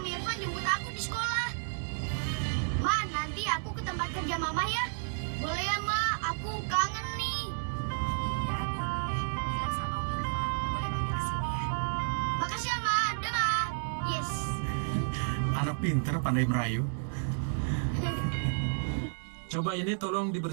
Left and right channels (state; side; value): silent; left; digital silence